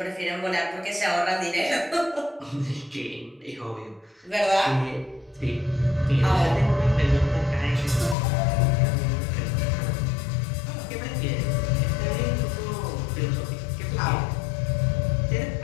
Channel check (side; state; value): right; drops out; at 8.2 s